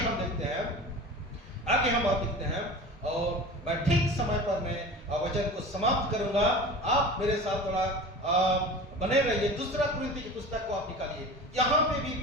देखते हैं और मैं ठीक समय पर मैं वचन को समाप्त करूंगा। आप मेरे साथ थोड़ा बने रहिए। दूसरा कुरिन्थी की पुस्तक को आप निकालिए। यहाँ पे भी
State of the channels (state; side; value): normal; both; correlation 0.35